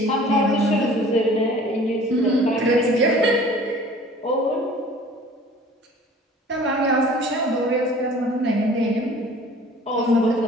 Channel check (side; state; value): both; normal; correlation 0.48